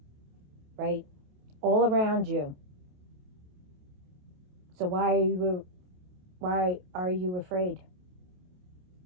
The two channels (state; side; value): late; left; 28 ms